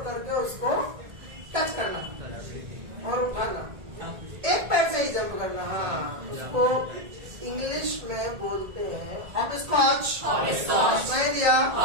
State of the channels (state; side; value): late; left; 1.8 ms